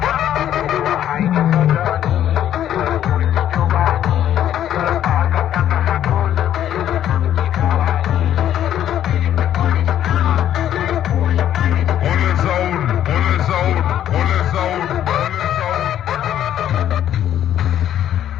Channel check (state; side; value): quieter; right; 11.0 dB